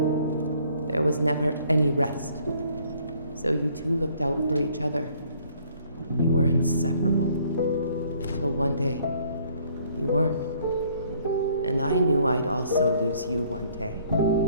There was never any rest. So you two looked out for each other. You were inseparable. Till one day, you weren't. And I knew I'd also lose you one day.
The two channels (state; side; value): inverted; both; correlation -0.62